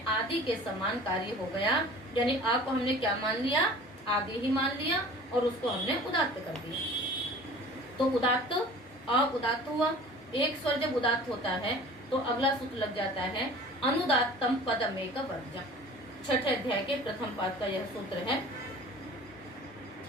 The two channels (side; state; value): both; normal; correlation 0.44